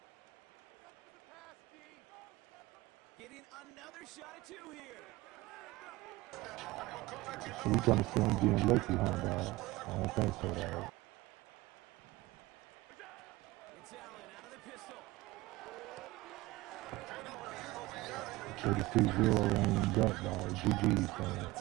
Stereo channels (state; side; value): quieter; left; 19.9 dB